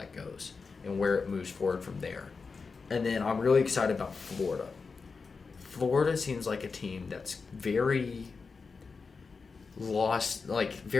goes and where it moves forward from there. And then I'm really excited about Florida. Florida seems like a team that's very lost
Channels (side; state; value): right; quieter; 4.8 dB